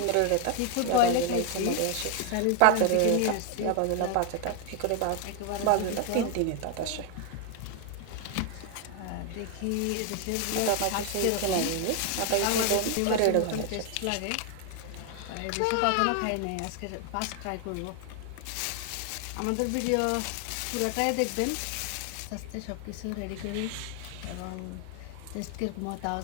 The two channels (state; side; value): different; both; correlation 0.00